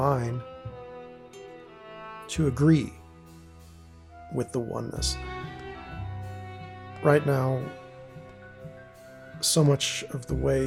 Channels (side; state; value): both; identical; correlation 1.00